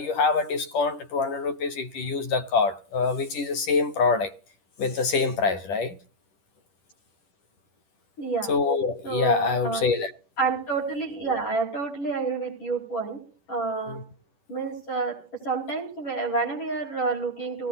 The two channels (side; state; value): right; late; 10 ms